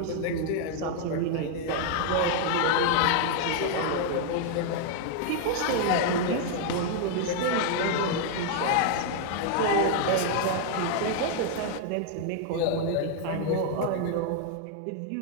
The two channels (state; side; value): different; both; correlation 0.00